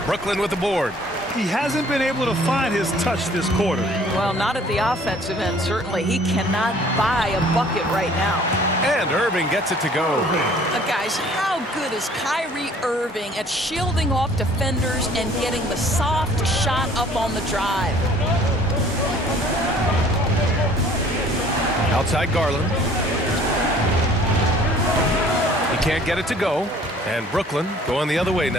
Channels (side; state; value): both; normal; correlation 0.55